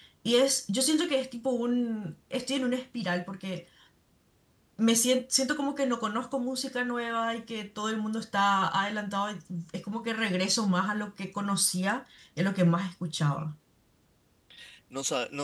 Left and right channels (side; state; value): both; identical; correlation 1.00